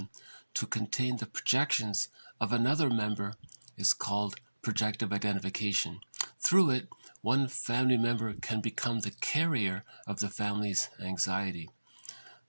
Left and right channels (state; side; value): inverted; both; correlation -1.00